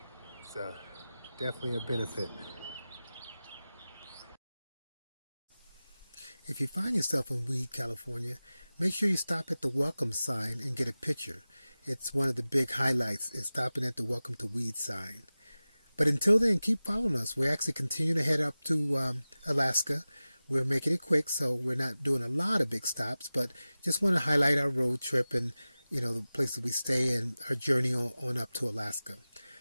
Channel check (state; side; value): inverted; both; correlation -0.96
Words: it's definitely a benefit. If you find yourself in Weed, California, make sure you stop at the welcome sign and get a picture. It's one of the big highlights is stopping at the welcome to Weed sign. But until then, keep following us. We're actually continuing to head up to Alaska. We're making it quick, so we're not doing a lot of big stops, but just want to highlight our road trip and, the places we stay and our journey on up to Alaska.